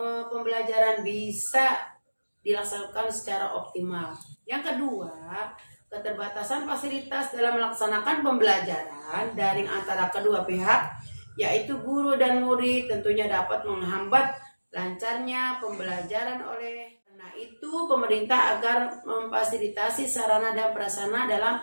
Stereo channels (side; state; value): both; inverted; correlation -1.00